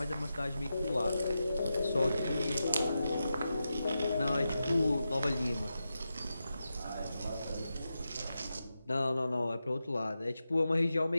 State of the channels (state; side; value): inverted; both; correlation -0.90